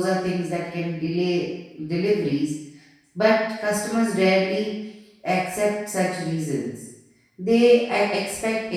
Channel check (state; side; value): identical; both; correlation 1.00